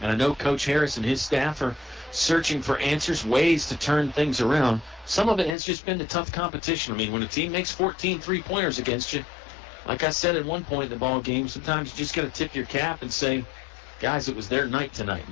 I know Coach Harris and his staff are searching for answers, ways to turn things around. Some of it has just been the tough competition. I mean, when a team makes 14 three-pointers against you, like I said at one point in the ball game, sometimes you just got to tip your cap and say, guys, it was their night tonight.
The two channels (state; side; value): drops out; right; at 5.6 s